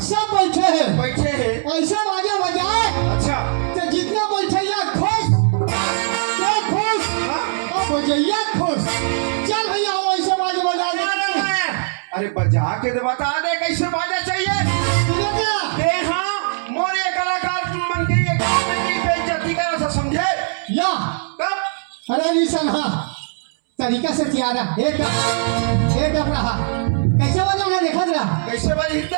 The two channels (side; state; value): left; silent; 66 dB below the other